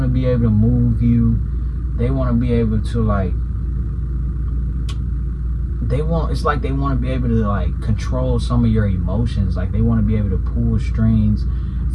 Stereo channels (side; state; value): both; identical; correlation 1.00